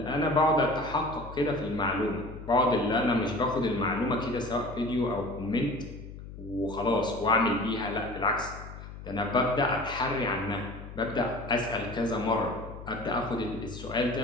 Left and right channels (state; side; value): noise; left; hum, 13 dB below the sound